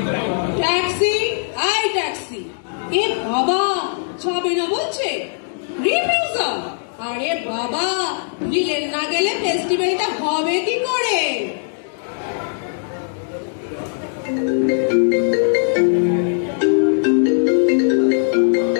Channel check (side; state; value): right; silent; digital silence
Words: ট্যাক্সি, আই ট্যাক্সি। এ বাবা, যাবে না বলছে, রিফিউজাল। আরে বাবা, ভিলেন না গেলে ফেস্টিভ্যালটা হবে কি করে?